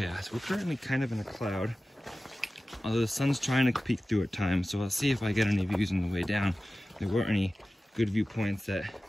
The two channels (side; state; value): both; normal; correlation 0.96